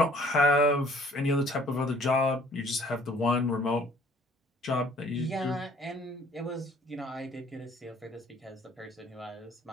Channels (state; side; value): normal; both; correlation 0.56